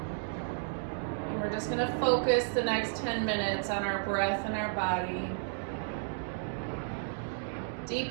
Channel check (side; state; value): left; silent; digital silence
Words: And we're just going to focus the next 10 minutes on our breath and our body.